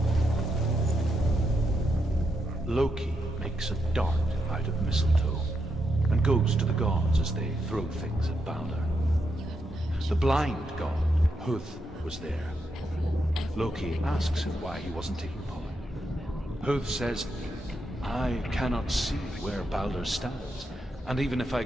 mistletoe and goes to the gods as they throw things at Balder. The blind god, Huth, was there. Loki asks him why he wasn't taking part. Huth says, I cannot see where Balder stands, and even if I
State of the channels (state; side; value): normal; both; correlation 0.82